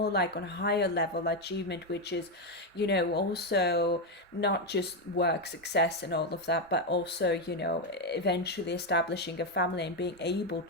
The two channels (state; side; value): normal; both; correlation 0.06